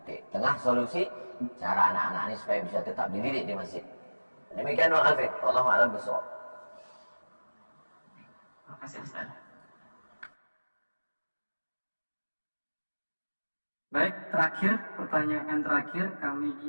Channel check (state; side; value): inverted; both; correlation -1.00